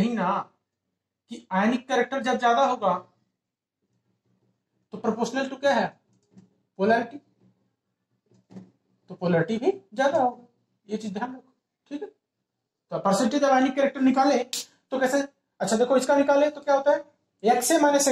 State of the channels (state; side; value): identical; both; correlation 1.00